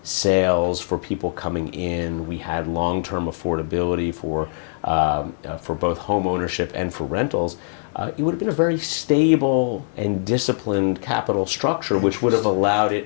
sales for people coming in. We had long-term affordability for both home ownership and for rentals. It would have been a very stable and disciplined capital structure, which would have allowed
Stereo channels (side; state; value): right; silent; digital silence